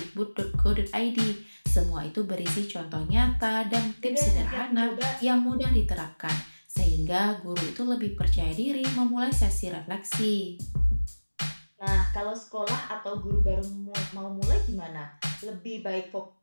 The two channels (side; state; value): both; inverted; correlation -1.00